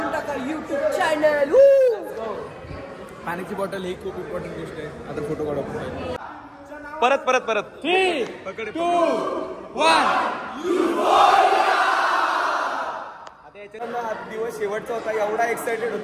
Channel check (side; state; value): both; identical; correlation 1.00